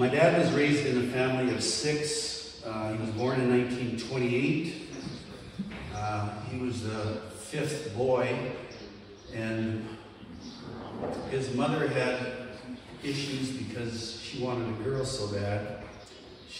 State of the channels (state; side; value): identical; both; correlation 1.00